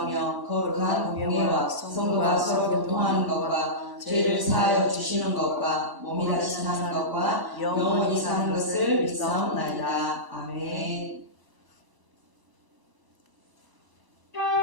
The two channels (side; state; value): left; late; 1.0 ms